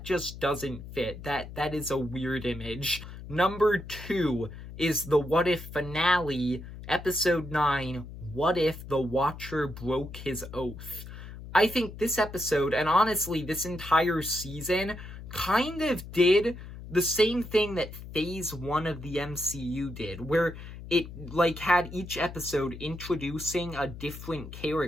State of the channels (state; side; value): noise; left; hum, 12 dB below the sound